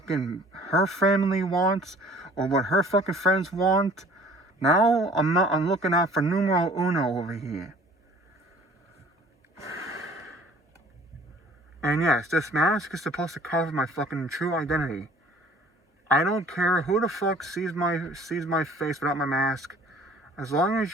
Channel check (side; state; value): both; normal; correlation 0.52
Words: her family wants or what her fucking friends want. Now, I'm looking out for numero uno over here. And yes, this mask is supposed to cover my fucking true identity. I don't care who the fuck sees my face without my mask. As long